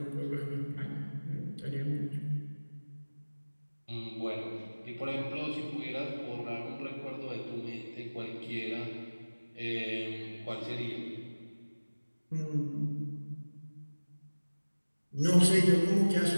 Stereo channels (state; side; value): inverted; both; correlation -1.00